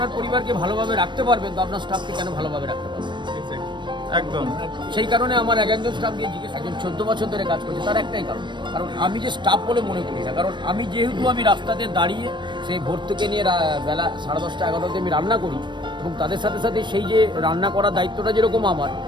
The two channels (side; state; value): left; late; 0.22 ms